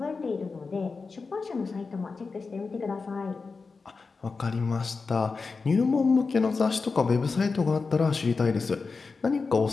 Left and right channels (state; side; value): quieter; right; 4.4 dB